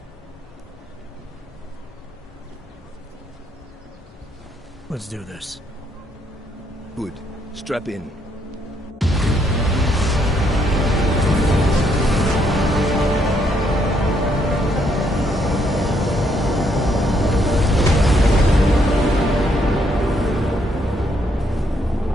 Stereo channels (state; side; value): normal; both; correlation 0.72